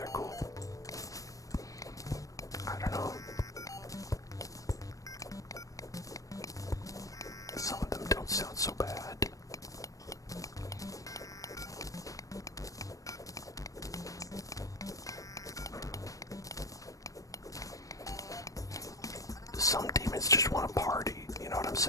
cool. I don't know. Some of them don't sound so bad. Some demons just want to party, you know what I'm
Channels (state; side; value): late; right; 0.16 ms